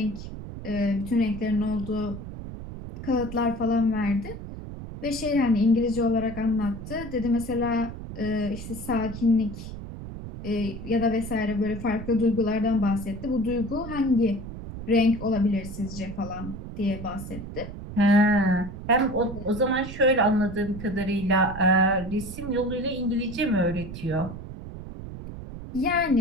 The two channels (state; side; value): noise; right; rumble, 10 dB below the sound